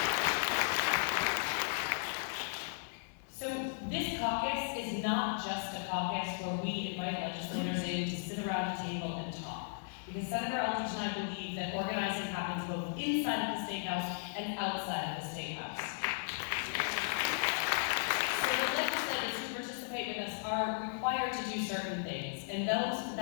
So this caucus is not just a caucus where we invite legislators in to sit around a table and talk. Because Senator Eldridge and I believe that organizing happens both inside of the State House and outside of the State House. With us are required to do certain things, and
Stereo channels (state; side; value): silent; right; digital silence